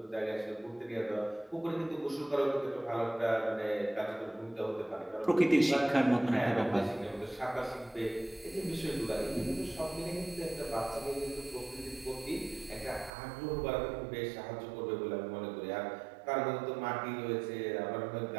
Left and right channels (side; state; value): left; drops out; at 13.1 s